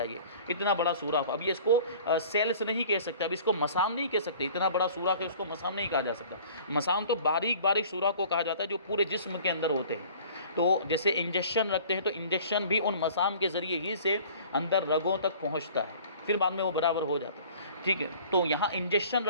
یہ اتنا بڑا سوراخ، اب یہ اس کو سیلس نہیں کہہ سکتے، اب اس کو مسام نہیں کہہ سکتے، اتنا بڑا سوراخ ہے اس کو مسام نہیں کہا جا سکتا۔ مسام تو باریک باریک سوراخ کو کہا جاتا ہے جو پورے جسم کے اندر ہوتے ہیں۔ تو جیسے انجیکشن رکھتے ہیں تو انجیکشن بھی ان مسام کے ذریعے ہی سے اندر رگوں تک پہنچتا ہے، پھر بعد میں وہ برابر ہو جاتا ہے۔ ٹھیک ہے، تو یہاں انجیکشن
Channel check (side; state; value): both; inverted; correlation -0.48